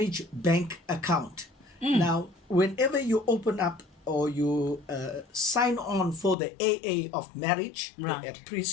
bank account. Now, whenever you open up or you sign on for the AA of marriage, Right. the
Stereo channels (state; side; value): drops out; right; at 6.4 s